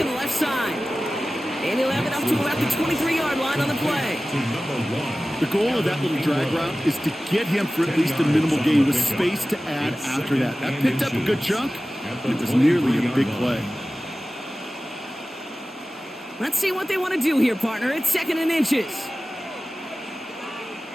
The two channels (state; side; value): normal; both; correlation 0.96